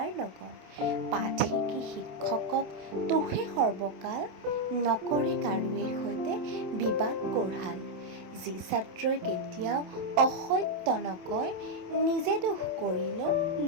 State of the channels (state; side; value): late; left; 27 ms